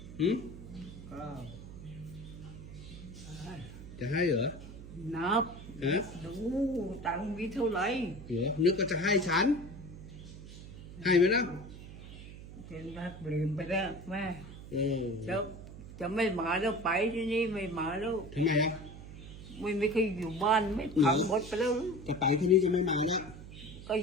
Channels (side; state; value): right; noise; hum, 14 dB below the sound